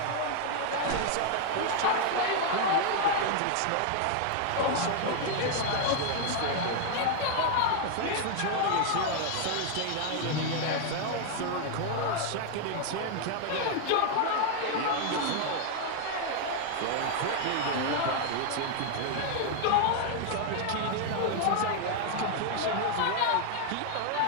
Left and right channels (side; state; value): both; different; correlation 0.00